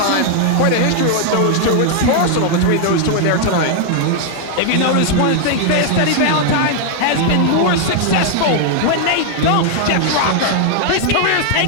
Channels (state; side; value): different; both; correlation 0.00